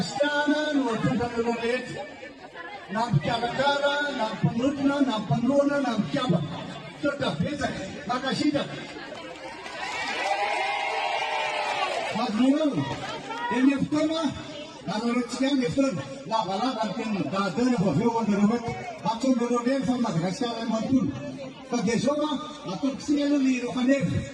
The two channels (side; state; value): both; identical; correlation 1.00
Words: waktu dulu it. Nam Kalangara, nam Panrutna, nam Panrona, nam Java. Sudah, bisa. Makasih dah. Madrul, ini pertama. Kalau rencana nifran, lama mungkin dah ada beberapa orang macam orang sama dengan orang mantul. Kegesoma, atau siapa ni orang ni?